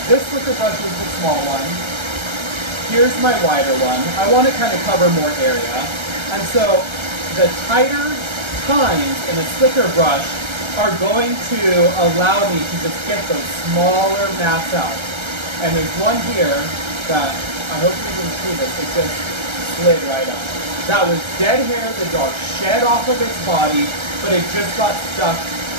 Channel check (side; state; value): left; late; 1.3 ms